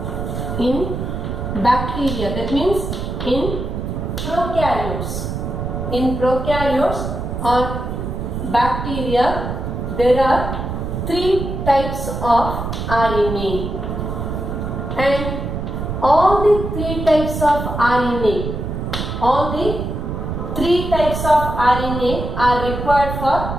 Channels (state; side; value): noise; right; rumble, 4 dB below the sound